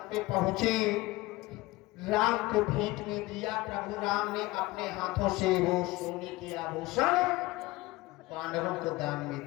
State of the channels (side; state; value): right; quieter; 20.3 dB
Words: पे पहुंचे, राम को भेंट में दिया। प्रभु राम ने अपने हाथों से वो सोने के आभूषण बानरों को दान में